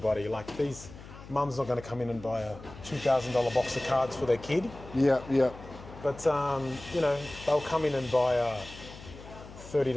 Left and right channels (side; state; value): left; noise; hum, 16 dB below the sound